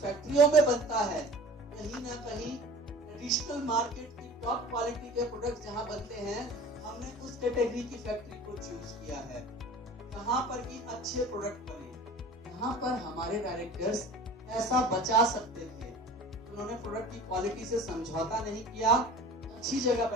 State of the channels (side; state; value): both; normal; correlation 0.41